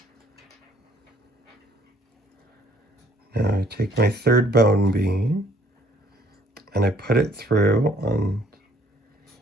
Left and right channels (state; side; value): normal; both; correlation 0.62